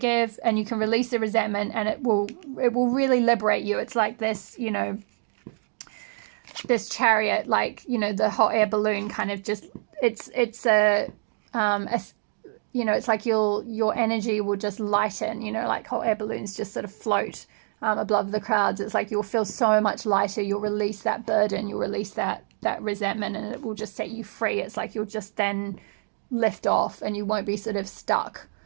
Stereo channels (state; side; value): silent; left; digital silence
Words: and you can release the resentment, and it will really liberate you. It's like this, you know, this chariot, like, you know, the hot air balloon kind of just, it's a you know, it's like your energy will just lighten, you know, like hot air balloons just sort of float above the clouds. It's like you'll feel so much lighter, you'll release that burden, you'll release that resentment, and it will just set you free. It's like you'll just then lift off and you won't be sort of stuck